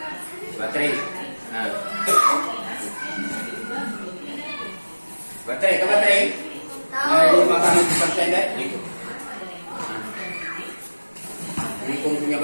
Baterai. Nah. Baterai. Nah, 5% deh. Gitu. Nah. Ini punya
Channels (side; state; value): both; inverted; correlation -1.00